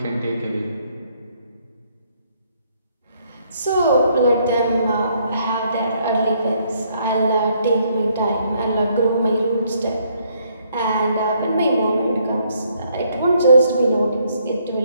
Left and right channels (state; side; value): inverted; both; correlation -0.69